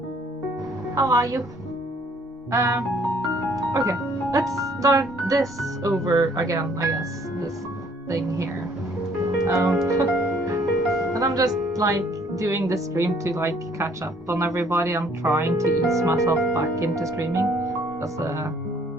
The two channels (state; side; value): normal; both; correlation 0.61